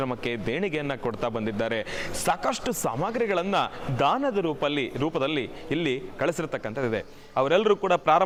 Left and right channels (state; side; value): identical; both; correlation 1.00